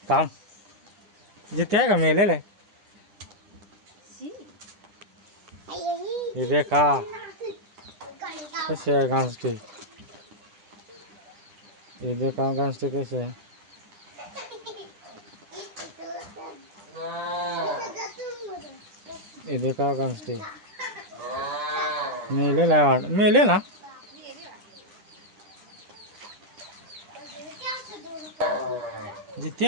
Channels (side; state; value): left; late; 10 ms